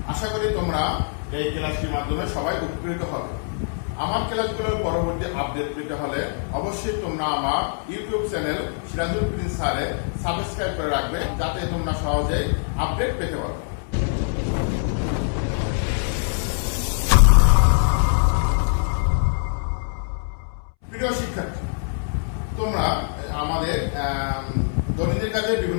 আশা করি তোমরা এই ক্লাসটির মাধ্যমে সবাই উপকৃত হবে। আমার ক্লাসগুলোর পরবর্তী আপডেট পেতে হলে অবশ্যই তোমরা আমার ইউটিউব চ্যানেল সিরাজুল প্রিন্স স্যারে সাবস্ক্রাইব করে রাখবে, যাতে তোমরা সহজেই আপডেট পেতে পারো। প্রিয় শিক্ষার্থী, তোমরা আমাদের দৈনন্দিন কাজে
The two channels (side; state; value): right; silent; 63 dB below the other